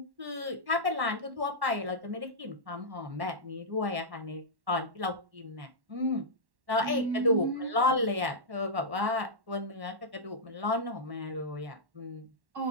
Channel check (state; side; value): late; left; 1.1 ms